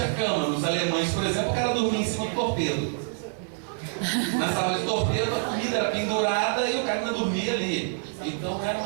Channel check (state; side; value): silent; left; 61 dB below the other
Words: cama. Nos alemães, por exemplo, o cara dormia em cima do torpedo. Na sala de torpedo, a comida era pendurada e o cara ainda dormia ali. Então, era